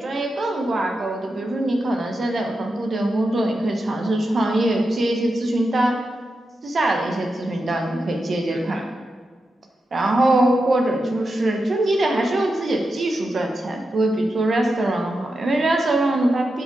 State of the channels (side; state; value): both; normal; correlation 0.88